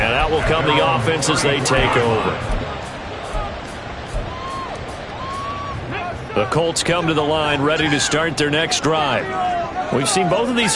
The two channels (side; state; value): both; identical; correlation 1.00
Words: that will come the offense as they take over. The Colts come to the line ready to start their next drive. We've seen both of